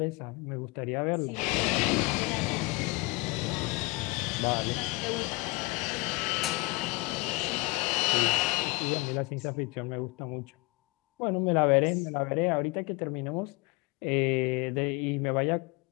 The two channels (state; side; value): quieter; right; 25.4 dB